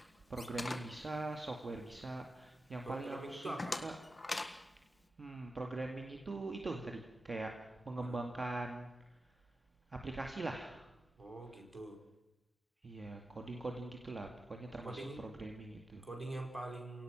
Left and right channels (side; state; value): both; normal; correlation 0.91